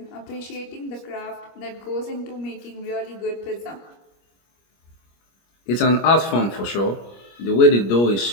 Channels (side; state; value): right; late; 25 ms